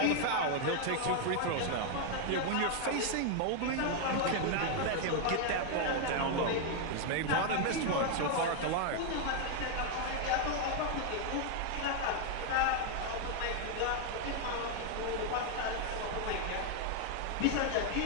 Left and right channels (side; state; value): both; different; correlation 0.00